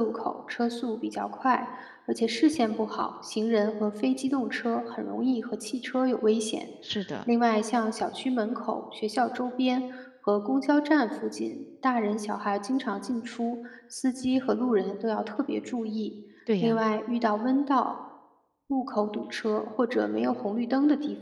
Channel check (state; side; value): identical; both; correlation 1.00